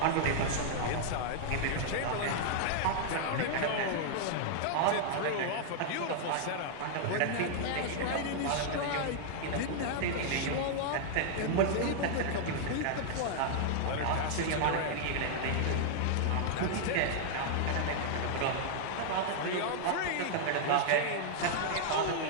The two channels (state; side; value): different; both; correlation -0.01